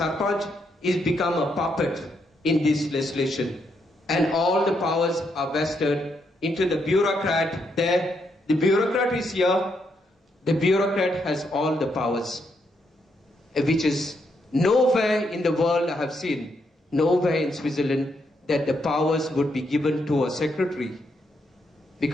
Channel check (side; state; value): both; normal; correlation 0.78